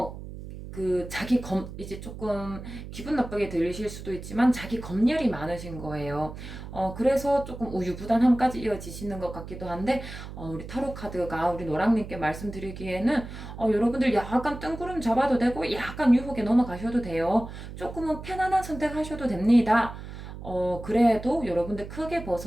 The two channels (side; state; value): right; noise; hum, 11 dB below the sound